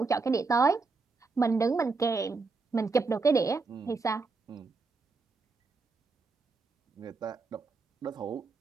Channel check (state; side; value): quieter; left; 4.2 dB